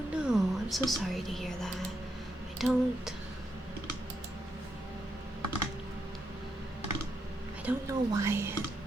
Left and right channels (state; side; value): normal; both; correlation 0.81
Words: no, I'm so sorry to hear that. I don't know why it